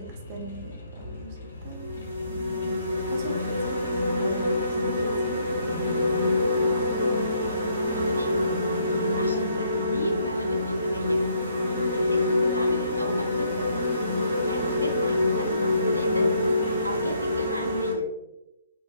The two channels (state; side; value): inverted; both; correlation -0.70